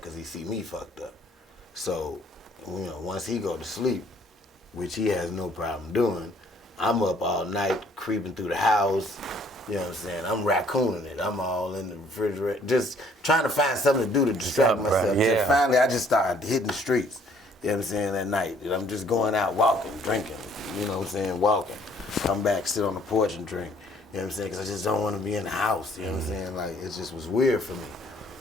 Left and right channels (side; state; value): both; normal; correlation 0.61